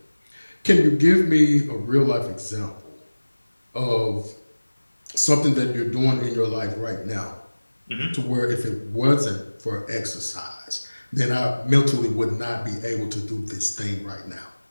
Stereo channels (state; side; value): inverted; both; correlation -1.00